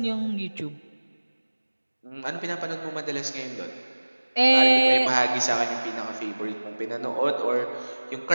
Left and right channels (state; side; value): inverted; both; correlation -1.00